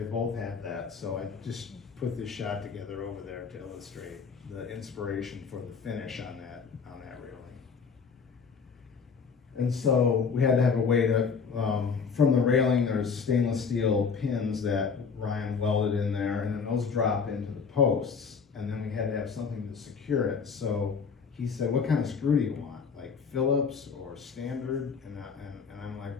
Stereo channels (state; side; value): quieter; right; 5.7 dB